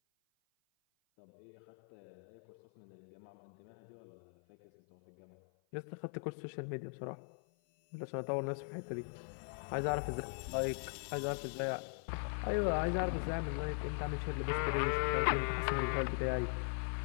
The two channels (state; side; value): silent; right; 51 dB below the other